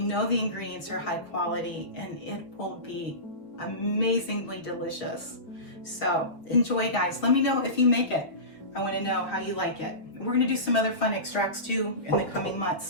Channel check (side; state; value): right; late; 6.5 ms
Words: the ingredients are high quality, and it will be amazingly delicious. So enjoy, guys. Let me know if you make it. I want to know how you like it. We're going to do some other fun extracts too in the coming months,